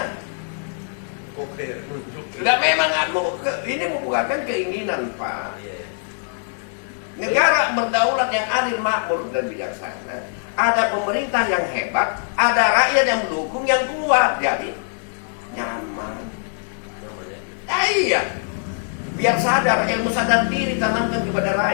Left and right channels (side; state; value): right; silent; digital silence